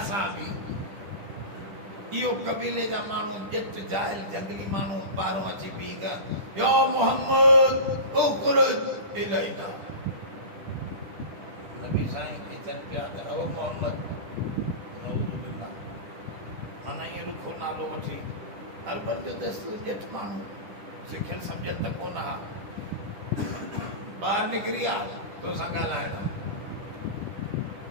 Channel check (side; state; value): left; late; 10 ms